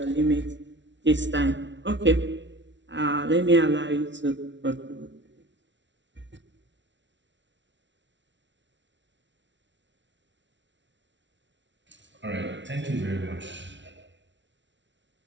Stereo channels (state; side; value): late; left; 0.53 ms